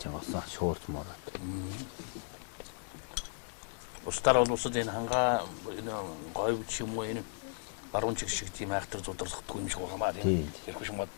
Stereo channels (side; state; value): right; silent; digital silence